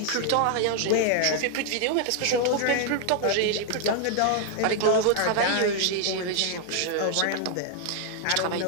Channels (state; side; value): different; both; correlation 0.00